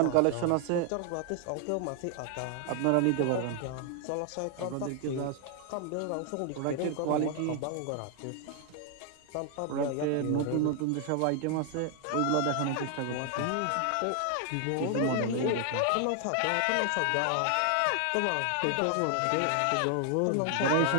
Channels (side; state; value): both; different; correlation 0.00